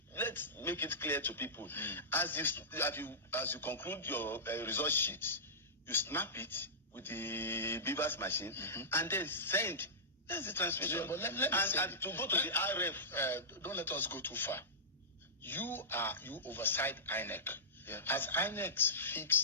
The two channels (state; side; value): normal; both; correlation -0.16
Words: let's make it clear to people. As you conclude your result sheet, you snap it with the Beavers machine and then send. That's the transmission. Yeah, but let me say and to go to the RF. Don't let us go too far. You oversight INEC. Yeah. As INEC